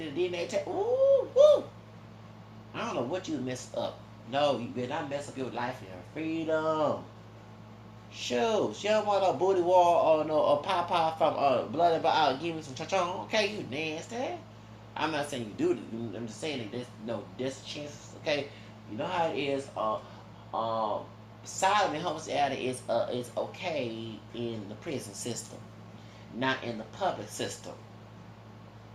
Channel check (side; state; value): both; identical; correlation 1.00